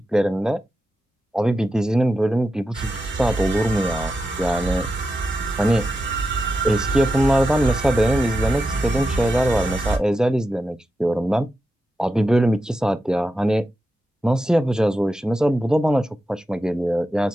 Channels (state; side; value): normal; both; correlation 0.89